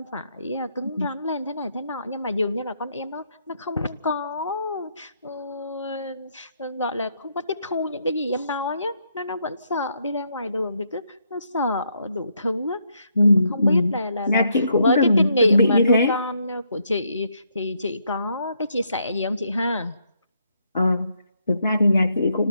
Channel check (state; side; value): inverted; both; correlation -0.75